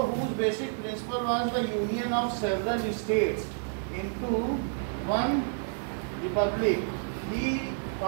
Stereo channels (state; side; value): silent; left; 58 dB below the other